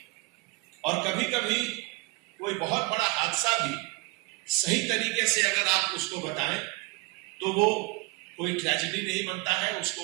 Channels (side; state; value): left; quieter; 23.9 dB